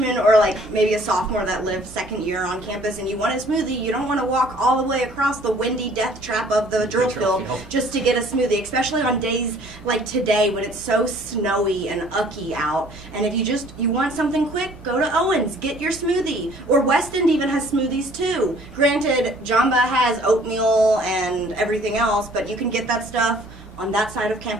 or like maybe a sophomore that lives second year on campus and you want a smoothie, you don't want to walk all the way across the windy death trap of the drill field just to get a smoothie, especially on days like today when it's so snowy and ucky out. And if you want something quick, go to Owens, get your smoothie. Or West End even has smoothies too. Granted, Jamba has oatmeal and everything else, but you can get that stuff on that side of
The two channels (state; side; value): normal; both; correlation 0.55